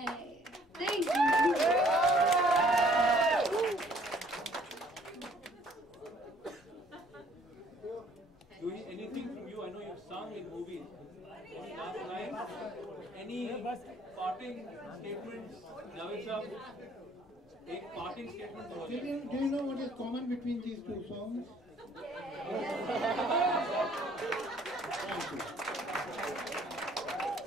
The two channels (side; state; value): both; normal; correlation 0.60